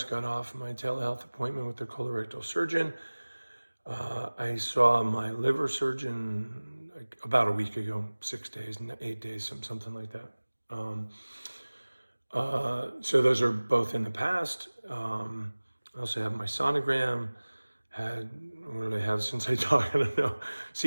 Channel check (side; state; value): both; inverted; correlation -1.00